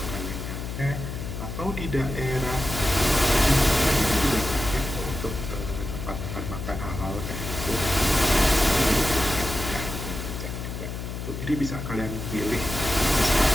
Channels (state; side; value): noise; left; hum, 6 dB below the sound